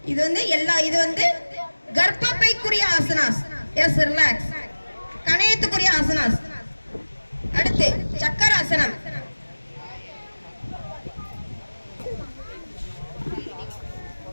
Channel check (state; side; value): inverted; both; correlation -1.00